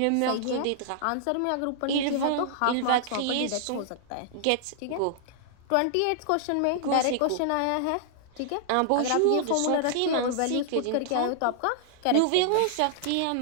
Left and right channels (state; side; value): different; both; correlation -0.01